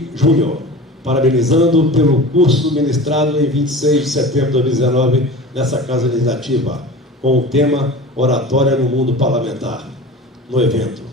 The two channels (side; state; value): both; normal; correlation 0.35